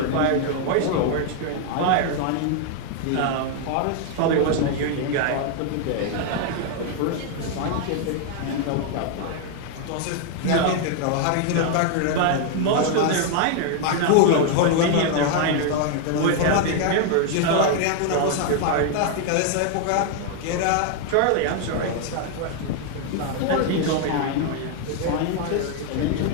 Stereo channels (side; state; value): both; different; correlation 0.00